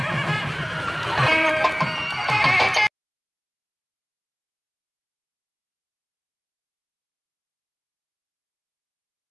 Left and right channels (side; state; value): both; identical; correlation 1.00